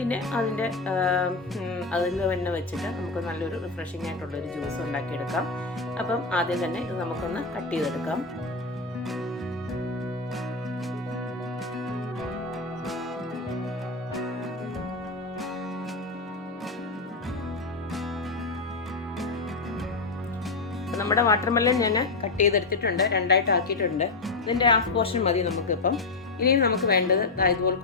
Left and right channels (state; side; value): quieter; right; 3.6 dB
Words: അതിൽ തന്നെ വെച്ചിട്ട് നമുക്ക് നല്ലൊരു റിഫ്രഷിംഗ് ആയിട്ടുള്ളൊരു ജ്യൂസ് ഉണ്ടാക്കിയെടുക്കാം. അപ്പം ആദ്യം തന്നെ ഇത് നമുക്കൊന്ന് കട്ട് ചെയ്തെടുക്കാം. നമ്മുടെ വാട്ടർമെലൺ ഞാൻ കട്ട് ചെയ്തെടുത്തിട്ടുണ്ട്, രണ്ടായിട്ട് ആക്കിയിട്ടുണ്ട്. ഇതിൻ്റെ ഹാഫ് പോർഷൻ മതി നമുക്കിപ്പം. ഇനിയും നമുക്ക് വേണ്ടത്